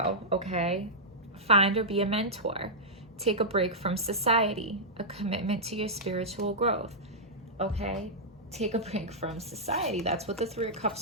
Okay. Find or be a mentor. Take a break from society. A commitment to your spiritual growth. Okay? Take a break from society. That's what the Three of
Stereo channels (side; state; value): both; normal; correlation -0.11